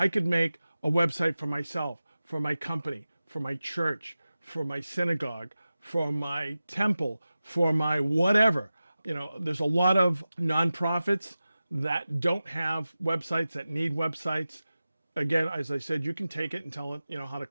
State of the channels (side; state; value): both; inverted; correlation -0.95